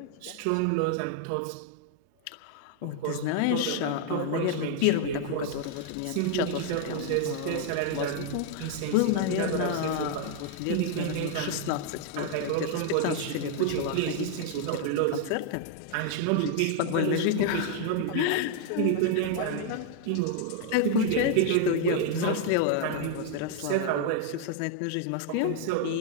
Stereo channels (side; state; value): both; different; correlation 0.00